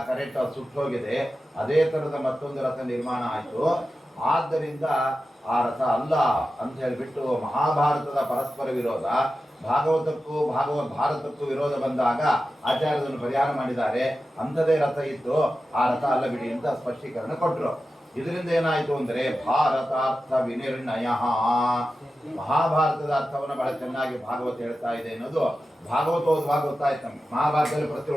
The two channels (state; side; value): normal; both; correlation 0.93